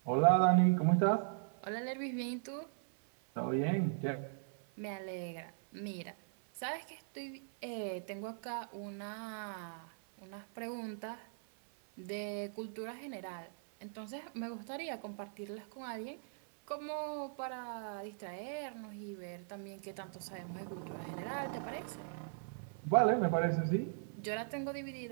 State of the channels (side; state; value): left; silent; 52 dB below the other